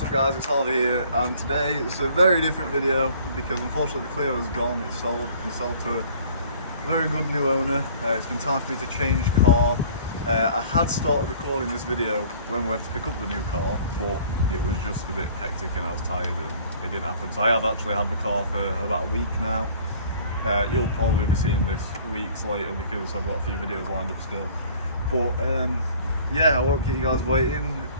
up guys, it's Harvey here, and today it's a very different video because unfortunately the Clio is gone. It's sold to a very good new owner. It's been time for me to change car. I had started recording this video when we went to pick up the new car, but it was just a bit hectic and I was tired and it didn't happen. So I have actually had the car for about a week now. You'll probably be seeing this weeks later because I've got a few videos lined up still. But yeah, I won't keep you guys waiting.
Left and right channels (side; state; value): both; inverted; correlation -0.52